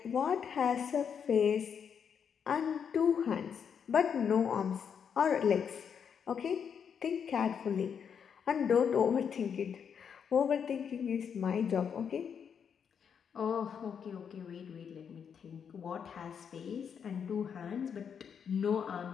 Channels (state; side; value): quieter; right; 7.3 dB